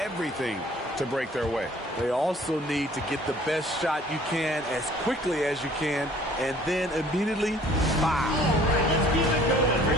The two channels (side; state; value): both; normal; correlation 0.54